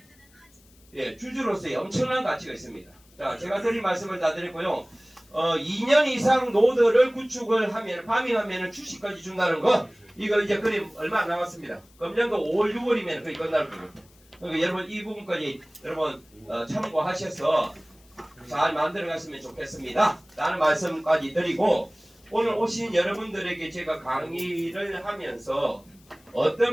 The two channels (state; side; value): noise; left; hiss, 29 dB below the sound